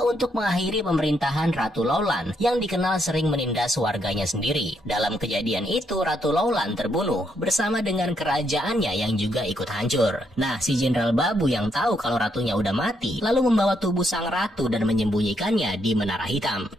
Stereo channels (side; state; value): both; normal; correlation 0.76